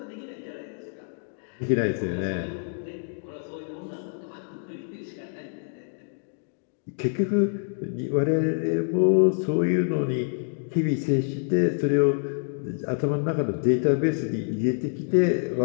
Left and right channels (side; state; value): right; silent; 60 dB below the other